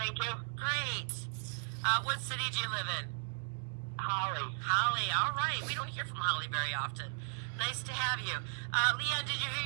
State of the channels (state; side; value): silent; left; digital silence